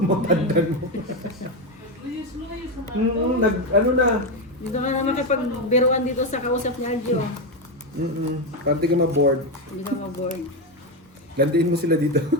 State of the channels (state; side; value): normal; both; correlation 0.10